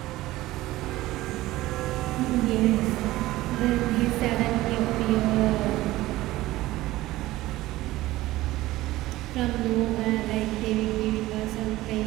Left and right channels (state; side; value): quieter; left; 17.2 dB